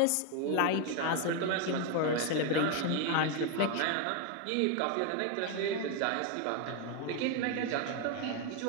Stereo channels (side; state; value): both; different; correlation 0.01